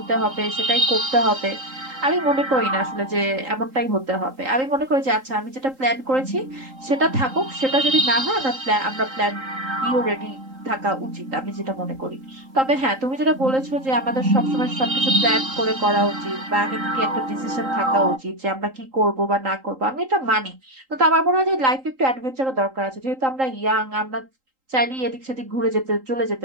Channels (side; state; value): left; late; 3.8 ms